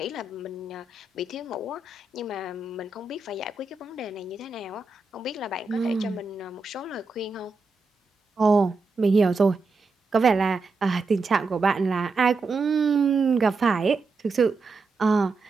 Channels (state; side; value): quieter; left; 3.8 dB